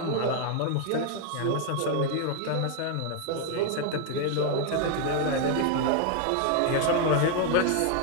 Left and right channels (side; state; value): both; different; correlation 0.00